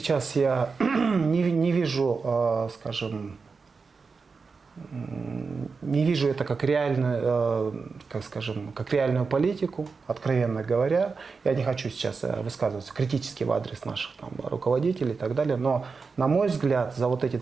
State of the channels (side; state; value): left; quieter; 4.8 dB